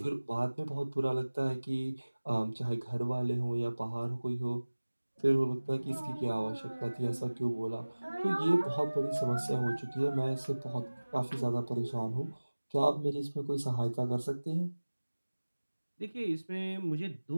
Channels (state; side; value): inverted; both; correlation -1.00